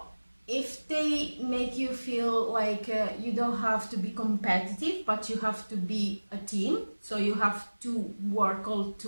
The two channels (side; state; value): both; inverted; correlation -1.00